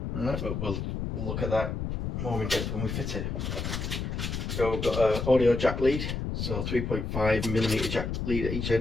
Alright, but we'll look at that more in depth when we fit it. So we've got an audio jack lead, so 3.5mm jack lead at each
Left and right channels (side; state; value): left; noise; rumble, 3 dB below the sound